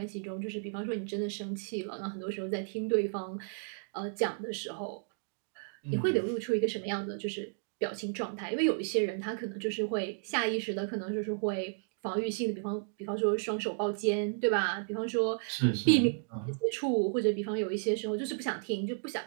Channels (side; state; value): left; silent; digital silence